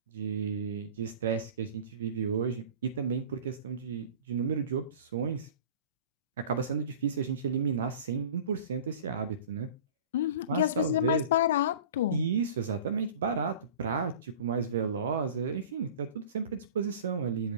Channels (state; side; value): inverted; both; correlation -0.40